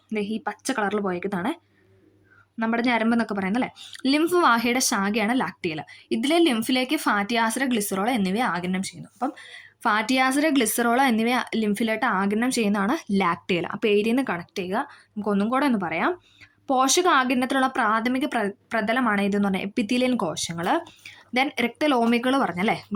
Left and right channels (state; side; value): identical; both; correlation 1.00